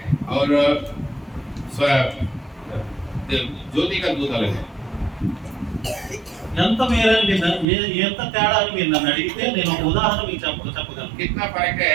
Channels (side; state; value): left; drops out; at 7.7 s